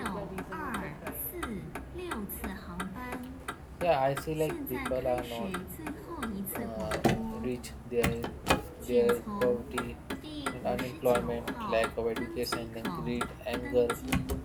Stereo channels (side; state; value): both; identical; correlation 1.00